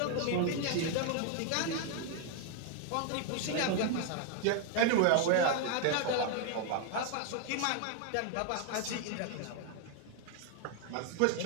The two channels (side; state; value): both; different; correlation 0.00